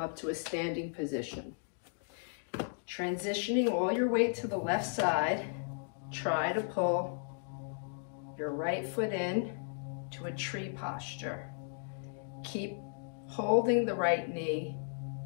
to a standing position. Transitioning all your weight to the left side, try to pull your right foot in to a tree posture. Keep holding the right knee,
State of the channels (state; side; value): silent; right; digital silence